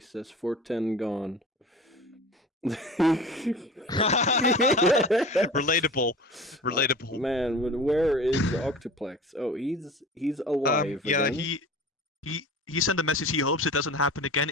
410 gone. Relatable. Man, but where is Octuplex? Oh, he's alive Yeah, again. he sent a message. He hopes it doesn't happen again.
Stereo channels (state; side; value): normal; both; correlation 0.38